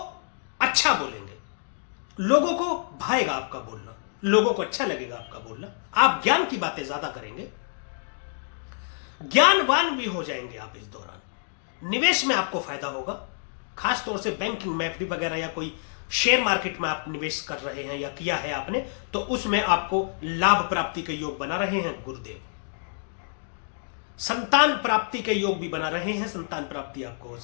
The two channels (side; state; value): right; silent; digital silence